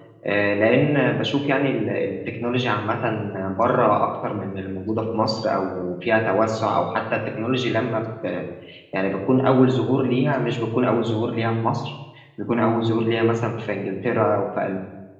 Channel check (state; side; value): identical; both; correlation 1.00